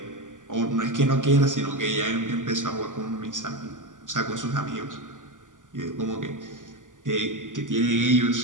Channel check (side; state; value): left; late; 0.88 ms